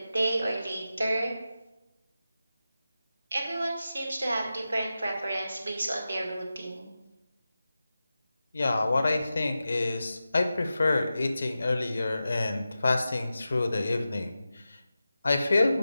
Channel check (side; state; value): both; inverted; correlation -0.93